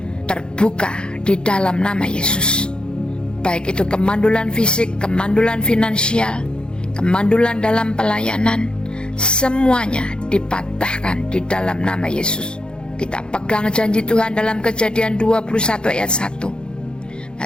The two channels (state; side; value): late; right; 0.049 ms